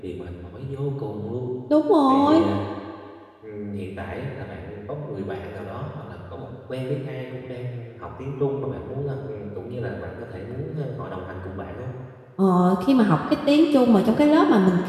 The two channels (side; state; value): both; identical; correlation 1.00